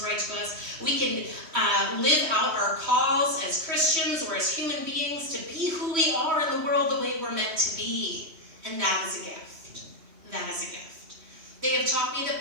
right to us. We can live out our calls as Christians or as human beings to be who we are in the world the way we're meant to be. And that is a gift. That is a gift. They have taught me the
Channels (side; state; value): left; late; 3.0 ms